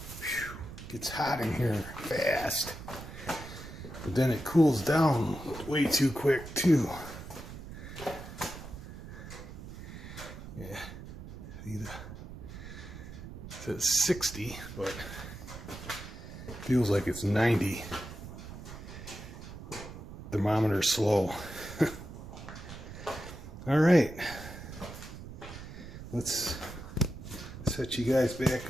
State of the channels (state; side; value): noise; right; rumble, 12 dB below the sound